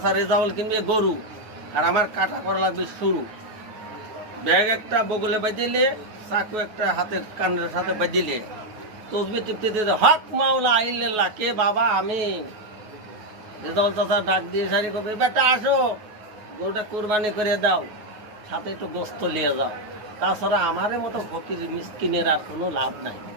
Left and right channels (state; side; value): late; left; 9.4 ms